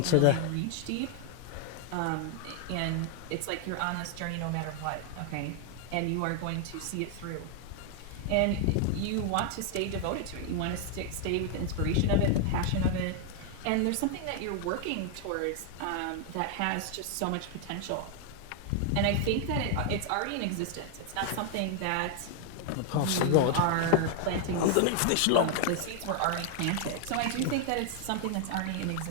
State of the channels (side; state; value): both; different; correlation 0.00